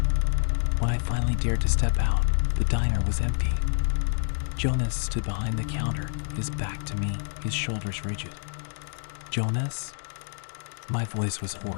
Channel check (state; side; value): silent; right; digital silence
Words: When I finally dared to step out, the diner was empty. Jonas stood behind the counter, his back to me, his shoulders rigid. "Jonas?" My voice was